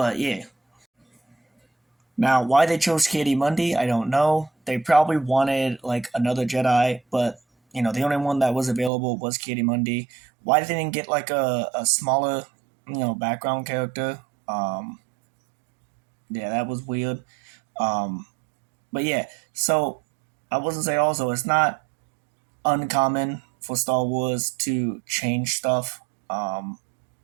yeah. Now, why they chose Ki-Adi-Mundi, I don't know. They probably wanted, another Jedi, but, the only one that was available was Ki-Adi-Mundi. Why they didn't get, a smaller, background character? Yeah, that was weird. But, yeah, so I was going to say also, it's not uncommon for Star Wars to change stuff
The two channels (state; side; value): drops out; left; at 8.9 s